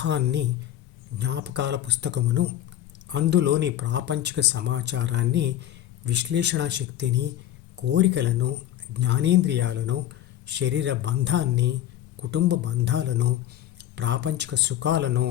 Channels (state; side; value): quieter; right; 12.3 dB